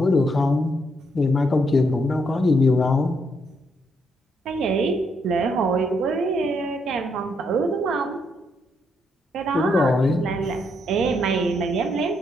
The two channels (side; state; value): both; normal; correlation 0.76